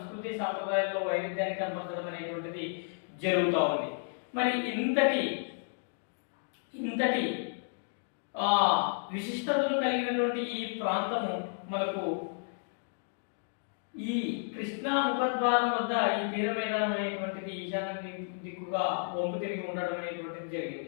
సాంప్రదాయాల్లో వైవిధ్యాన్ని కనపరచడం అనేటువంటిది జరుగుతూ ఉంది. మరి ఇంతటి విశిష్టతలు కలిగినటువంటి ఈ ప్రాంతము మనకు ఈ కృష్ణా ముఖద్వారం వద్ద ఈ తీర మైదానం అనేటువంటిది ఈశాన్య దిక్కుగా వంపు తిరిగి ఉండడం అనేటువంటిది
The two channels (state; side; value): silent; right; digital silence